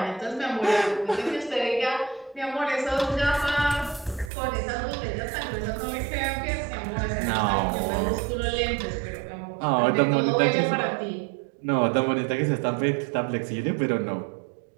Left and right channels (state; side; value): drops out; left; at 4.3 s